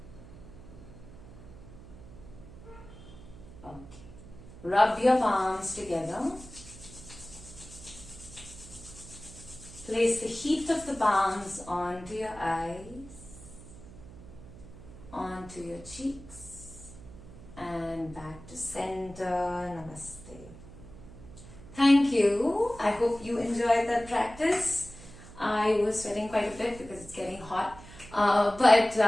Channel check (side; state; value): right; noise; hum, 17 dB below the sound